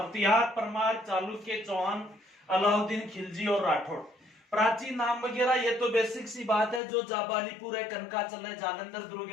परमार, चालुक्य, चौहान, अलाउद्दीन खिलजी और राठौड़। प्राचीन नाम वगैरह ये तो बेसिक सी बात है। जो जाबालीपुर है, कनकाचल है, जालंधर दुर्ग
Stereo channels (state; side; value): drops out; right; at 6.8 s